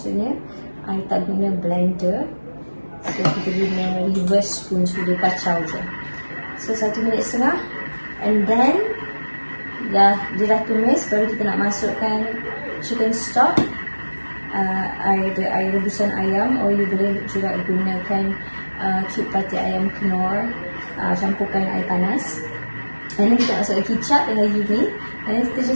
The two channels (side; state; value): both; inverted; correlation -1.00